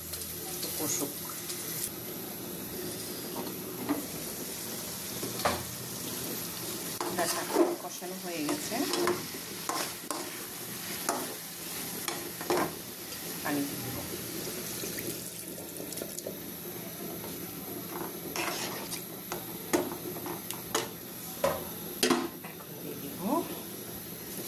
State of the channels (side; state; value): both; identical; correlation 1.00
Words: একটু কষুক। ডাটা কষানো হয়ে গেছে, পানি দিয়ে দেবো। এখন দিয়ে দিব